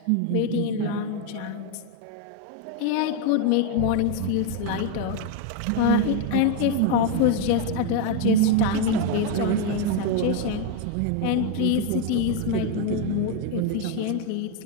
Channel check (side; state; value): both; different; correlation 0.01